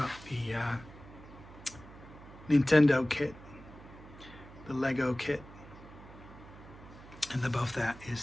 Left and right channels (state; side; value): noise; right; hum, 18 dB below the sound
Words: the Nintendo kit, the Lego kit, and above that